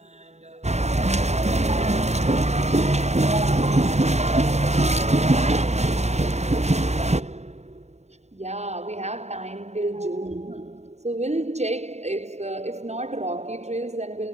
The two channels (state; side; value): late; left; 0.32 ms